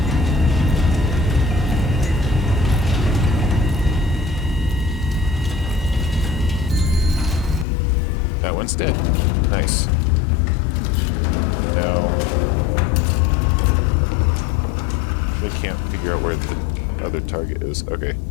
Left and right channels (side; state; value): right; drops out; at 7.7 s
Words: That one's dead. Nice. Now, I can't figure out where the other target is. Okay.